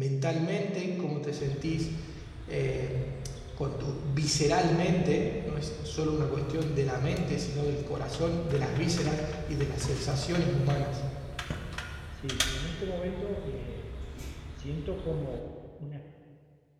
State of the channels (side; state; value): both; identical; correlation 1.00